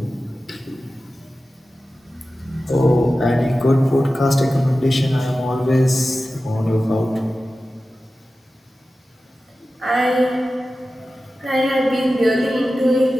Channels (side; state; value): both; normal; correlation 0.94